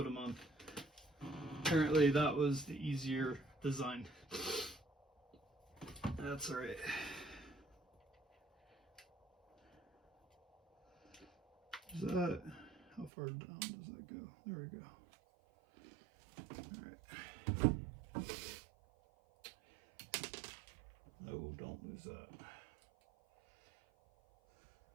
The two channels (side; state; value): left; drops out; at 13.1 s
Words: them on. Apparently that was the easier design. That's alright. Is that, how far down does that go? There we go. Alright. No, don't lose that.